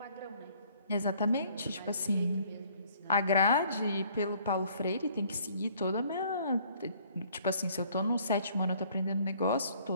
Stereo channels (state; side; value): inverted; both; correlation -0.60